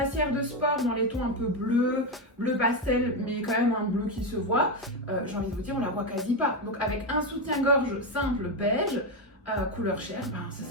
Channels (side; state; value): both; normal; correlation 0.10